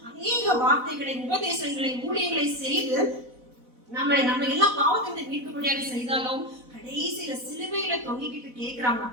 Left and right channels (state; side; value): late; left; 4.0 ms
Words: அநேக வார்த்தைகளை, உபதேசங்களை, ஊழியங்களை செய்து நம்ம எல்லாம் பாவத்தை மீட்கும்படியாக செய்தாலும் கடைசியில சிலுவையில தொங்கிக்கிட்டு கேட்கிறாங்க.